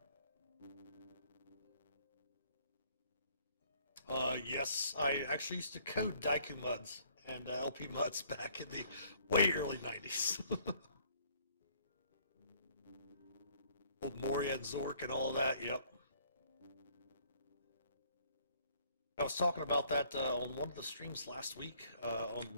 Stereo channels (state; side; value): inverted; both; correlation -0.62